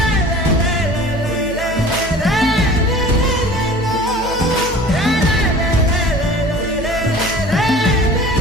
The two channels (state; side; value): noise; right; hum, 11 dB below the sound